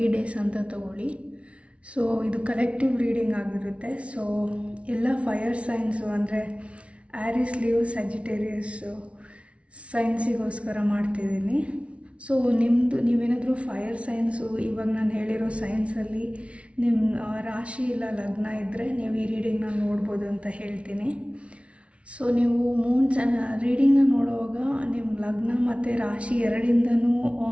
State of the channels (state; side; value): late; left; 0.061 ms